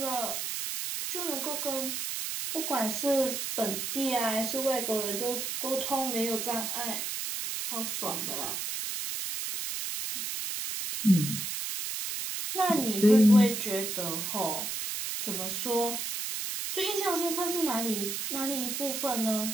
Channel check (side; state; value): right; noise; hiss, 3 dB below the sound